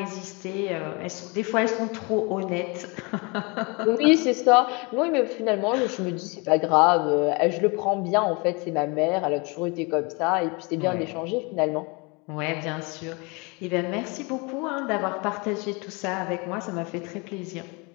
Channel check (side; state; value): right; quieter; 29.1 dB